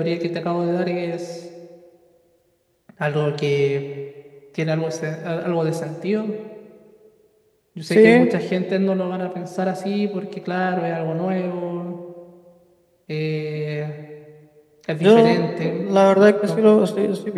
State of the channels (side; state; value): both; identical; correlation 1.00